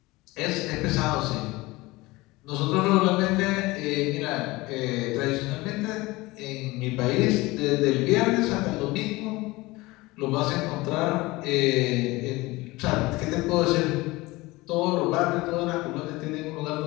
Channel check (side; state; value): right; quieter; 21.2 dB